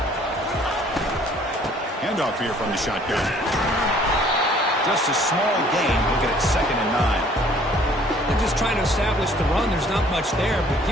Handoff here from the shotgun. Just a small gain. Look at it, 2nd and 9. They're just trying to establish the run. There's not much there, but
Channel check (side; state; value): both; normal; correlation 0.57